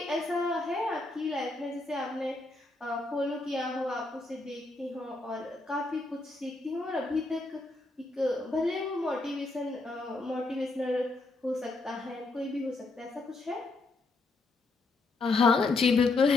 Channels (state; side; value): quieter; right; 3.3 dB